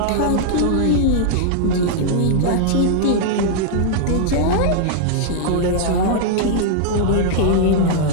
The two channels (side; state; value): both; different; correlation -0.01